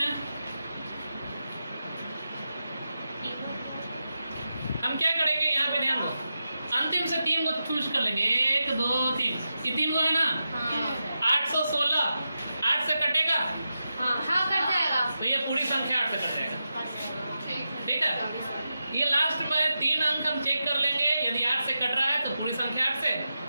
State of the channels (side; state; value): both; inverted; correlation -0.89